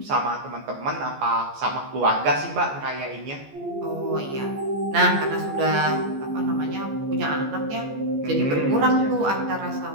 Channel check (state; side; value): late; left; 14 ms